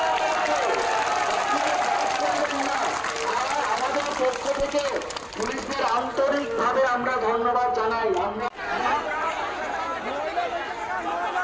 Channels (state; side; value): identical; both; correlation 1.00